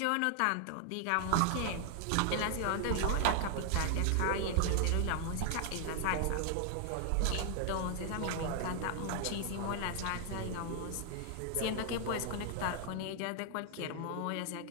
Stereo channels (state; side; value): different; both; correlation 0.00